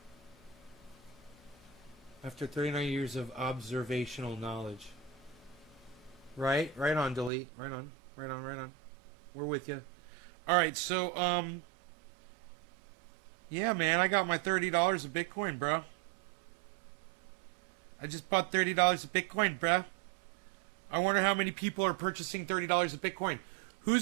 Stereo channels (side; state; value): left; drops out; at 7.3 s